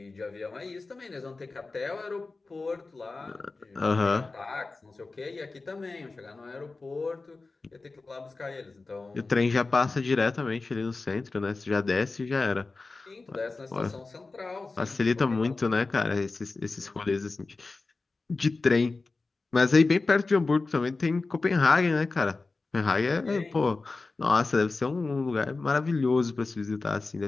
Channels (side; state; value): right; quieter; 3.7 dB